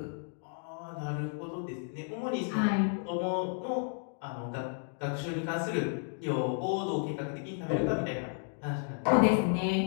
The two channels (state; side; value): silent; right; 56 dB below the other